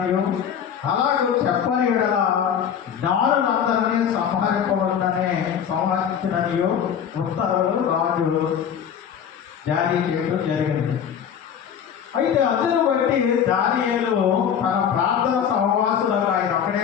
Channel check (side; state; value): right; quieter; 8.3 dB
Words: అలాగే చెప్పని ఎడల జ్ఞానులందరినీ సంహరించిననియు ఉత్తర్వులు రాజు జారీ చేయడం జరిగింది. అయితే అందును బట్టి దానియేలు తన ప్రార్థన సహవాసులకు, ఆయన ఒక్కడే